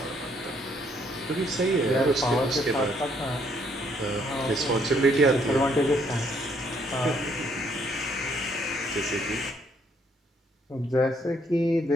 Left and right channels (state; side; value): normal; both; correlation 0.68